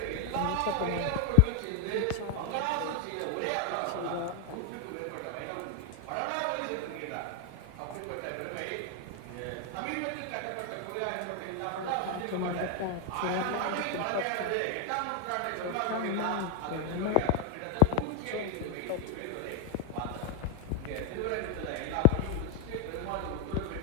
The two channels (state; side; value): different; both; correlation 0.00